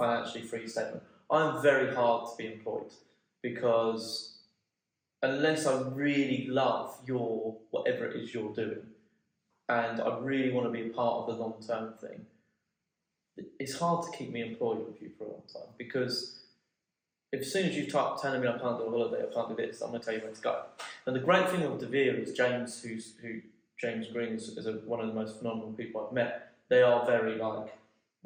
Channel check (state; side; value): identical; both; correlation 1.00